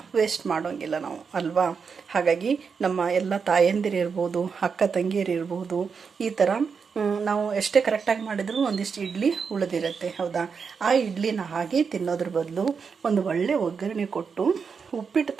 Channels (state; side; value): quieter; left; 5.8 dB